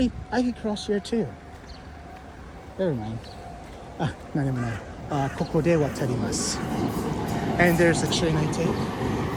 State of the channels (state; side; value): identical; both; correlation 1.00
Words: I could cross here too. Never mind. 何でもない。ここで渡ります。And there's the train I take.